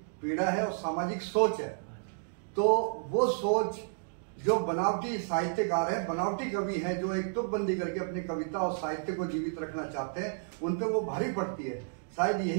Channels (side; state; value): left; silent; digital silence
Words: पीड़ा है और सामाजिक सोच है। तो वो सोच जो बनावटी साहित्यकार हैं, बनावटी कवि हैं, जो एक तुकबंदी करके अपनी कविता और साहित्य को जीवित रखना चाहते हैं, उन पे वो भारी पड़ती है। शायद